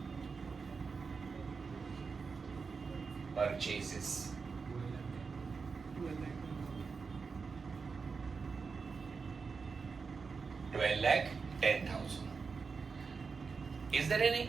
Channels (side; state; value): left; quieter; 5.0 dB